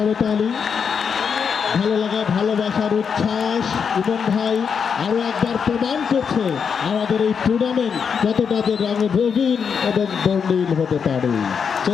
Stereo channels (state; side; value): quieter; right; 6.5 dB